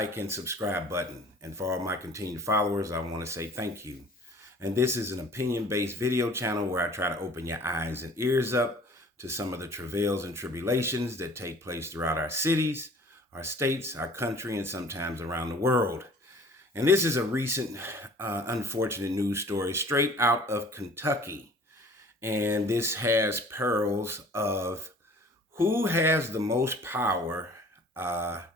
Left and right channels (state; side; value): normal; both; correlation 0.49